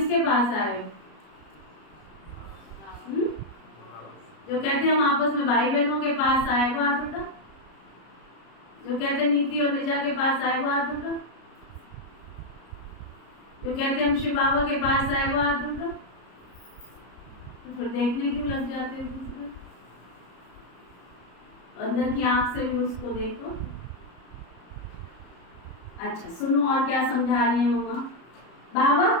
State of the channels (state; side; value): late; right; 33 ms